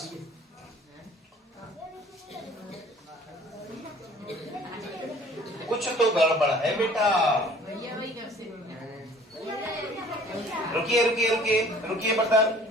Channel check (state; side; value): normal; both; correlation 0.52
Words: कुछ तो गड़बड़ है बेटा। रुकिए रुकिए रुकिए रुकिए बटर।